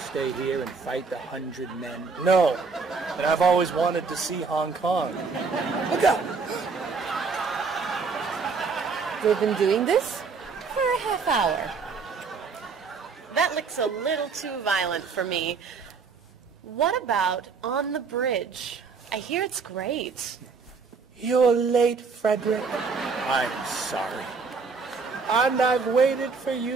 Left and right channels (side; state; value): left; quieter; 4.9 dB